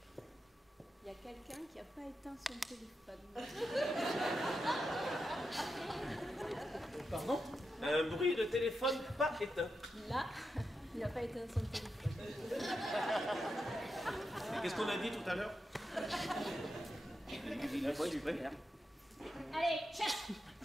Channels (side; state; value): both; normal; correlation 0.87